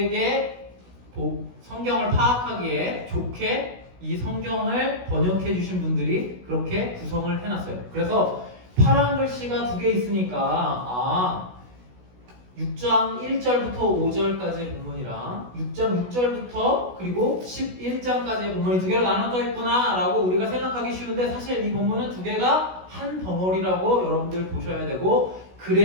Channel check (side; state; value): left; late; 16 ms